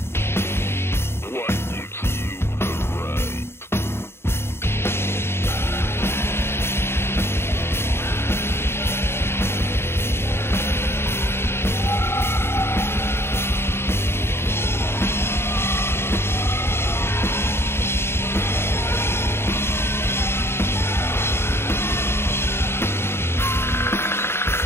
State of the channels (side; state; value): right; late; 0.12 ms